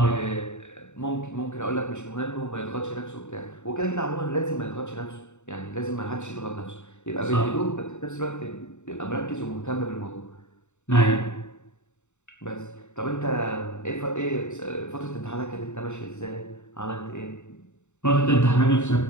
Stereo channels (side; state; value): right; late; 0.84 ms